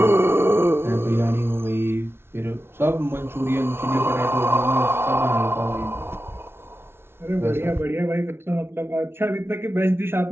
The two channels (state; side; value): late; left; 0.12 ms